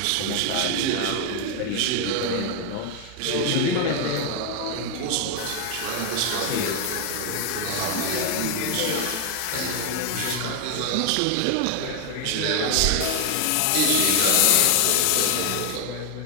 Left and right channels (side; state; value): both; different; correlation 0.01